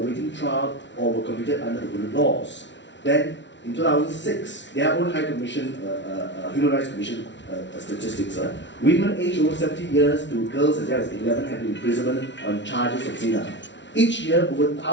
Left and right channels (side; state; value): right; late; 0.52 ms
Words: trial or were convicted under the hudud laws. Then, in 2006, their own High Commission, Human Rights Commission statistics, women aged over 70 years to girls as young as 11 have been imprisoned on charges of zina. Each year, over